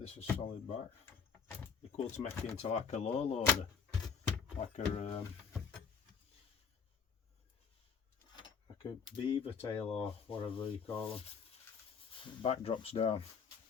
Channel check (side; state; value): right; quieter; 6.4 dB